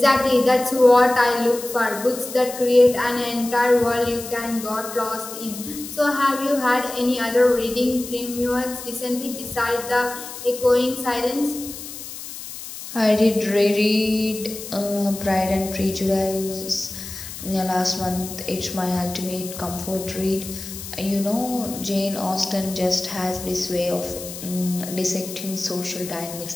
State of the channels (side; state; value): left; noise; hiss, 11 dB below the sound